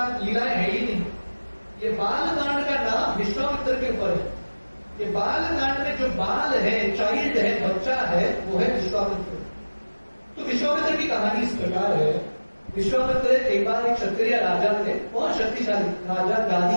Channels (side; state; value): both; inverted; correlation -1.00